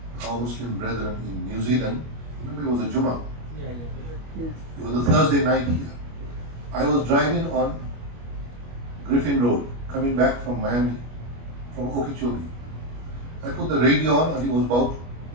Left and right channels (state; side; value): late; left; 25 ms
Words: our Muslim brethren in New Zealand. Remember, it was a Jummah. Yeah. It was a Thursday night here. I was driving on Griffin Road, coming back from Miami, from Okeechobee. I put the radio on and it was about